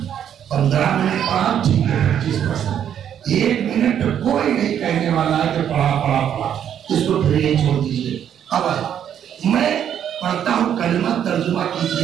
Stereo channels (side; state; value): left; quieter; 9.4 dB